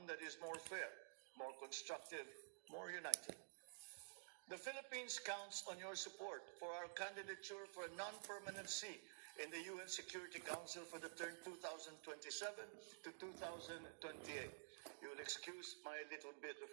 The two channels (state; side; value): silent; left; digital silence